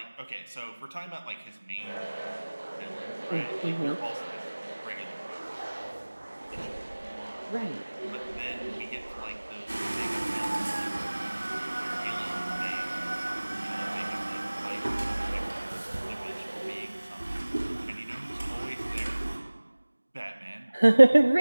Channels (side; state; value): both; inverted; correlation -1.00